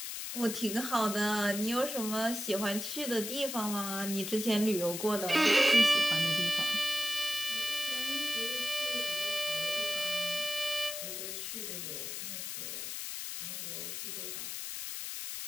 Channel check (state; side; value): noise; left; hiss, 5 dB below the sound